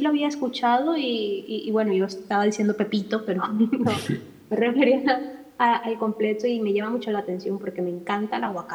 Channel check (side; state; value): both; identical; correlation 1.00